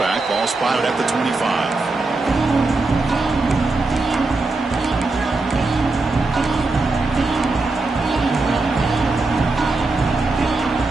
Ball spotted at the 25.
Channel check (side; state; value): left; quieter; 3.4 dB